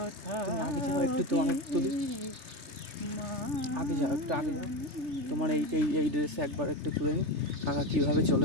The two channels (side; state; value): left; late; 3.3 ms